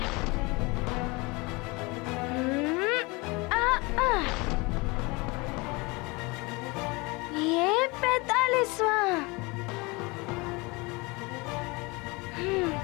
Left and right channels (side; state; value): right; quieter; 25.9 dB